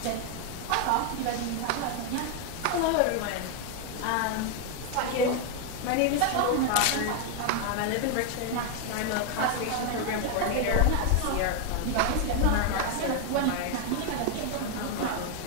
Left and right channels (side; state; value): both; different; correlation 0.01